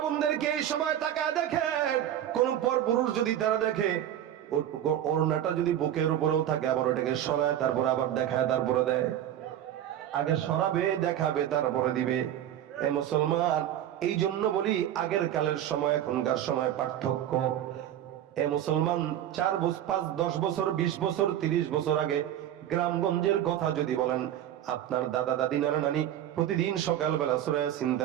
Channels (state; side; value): quieter; left; 11.3 dB